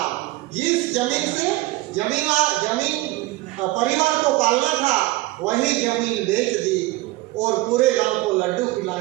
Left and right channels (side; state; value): left; quieter; 19.1 dB